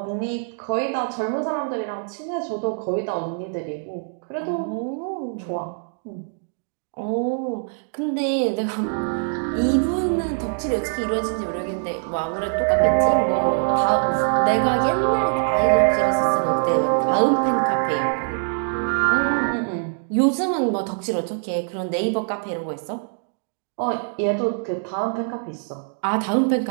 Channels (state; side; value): silent; left; digital silence